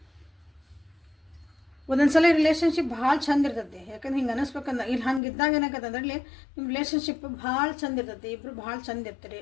ಒಂದೊಂದು ಸಲ ರಿಲೇಷನ್ಶಿಪ್ ಭಾಳ ಚಂದ ಇರ್ತೈತಿ. ಯಾಕಂದ್ರೆ ಹಿಂಗೆ ಅನ್ನಿಸ್ಬೇಕಂದ್ರೆ ಇಲ್ಲಿ ಹಂಗೆ ಇದ್ದಾಗ ಏನಾಗತ್ತಂದ್ರೆ ಇಲ್ಲಿ ನಿಮ್ಮ ರಿಲೇಷನ್ಶಿಪ್ ಭಾಳ ಚಂದ ಇರ್ತೈತಿ. ಇಬ್ಬರು ಭಾಳ ಚಂದ ಇರ್ತೀರಿ.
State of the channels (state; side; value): drops out; right; at 5.2 s